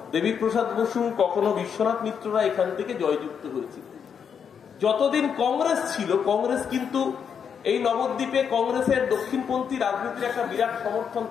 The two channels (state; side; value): quieter; right; 7.2 dB